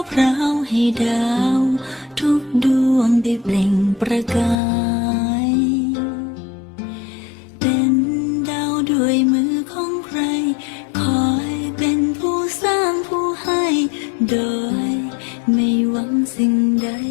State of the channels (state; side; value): drops out; right; at 4.5 s